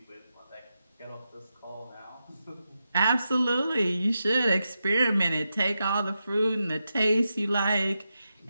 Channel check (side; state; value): both; inverted; correlation -0.88